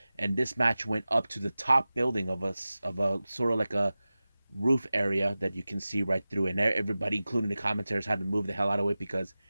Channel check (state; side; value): inverted; both; correlation -0.96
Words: And this match went up to the top building of a sort of like a roof area that you can see right through, and everybody, including the commentators, had to move the hell out of it because